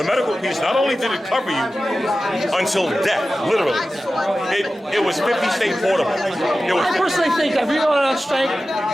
not only did it cover you until death, literally, it was 50 state portable. I personally think if we were on strike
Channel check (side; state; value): both; normal; correlation 0.94